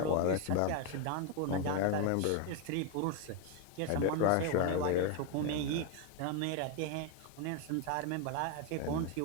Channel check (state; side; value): different; both; correlation 0.01